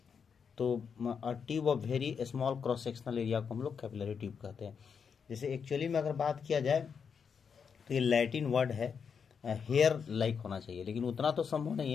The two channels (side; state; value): right; quieter; 6.5 dB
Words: तो tube of very small cross sectional area को हम लोग कैपिलरी ट्यूब कहते हैं। जैसे एक्चुअली में अगर बात किया जाए तो ये लैटिन वर्ड है, हेयर लाइक होना चाहिए, लेकिन उतना तो संभव नहीं